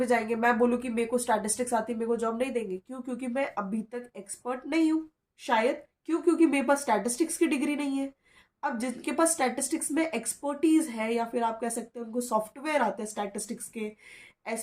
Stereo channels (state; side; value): identical; both; correlation 1.00